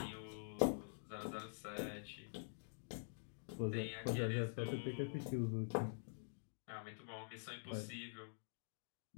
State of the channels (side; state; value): right; silent; digital silence